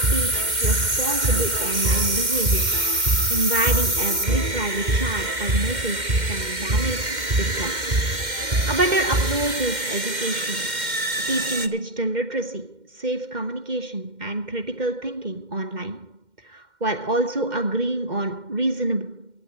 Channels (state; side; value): late; left; 2.1 ms